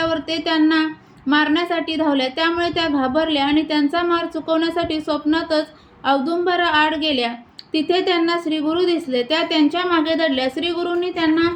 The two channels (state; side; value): identical; both; correlation 1.00